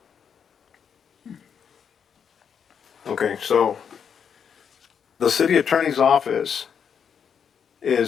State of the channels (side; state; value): right; quieter; 7.3 dB